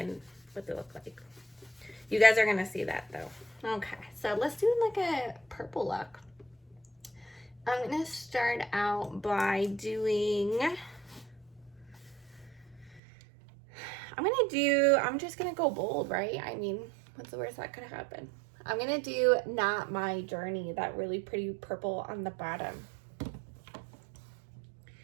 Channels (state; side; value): drops out; left; at 13.0 s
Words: what they look like. You guys are gonna see that though. Okay, so let's do like a purple look. I'm gonna start out by doing, I'm just gonna go bold, right? I mean, what's the worst that could happen? I'm gonna do Not My Journey, that really pretty purple on the bottom.